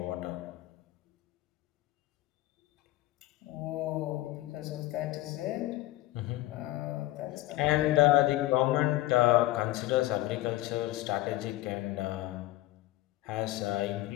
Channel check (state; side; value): quieter; right; 16.6 dB